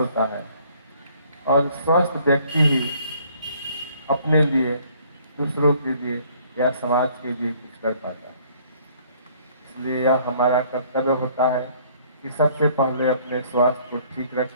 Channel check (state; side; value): inverted; both; correlation -0.60